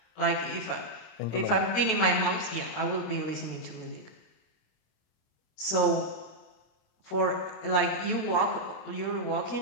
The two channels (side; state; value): right; late; 26 ms